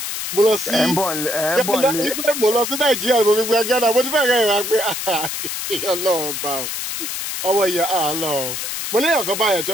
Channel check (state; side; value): noise; left; hiss, 5 dB below the sound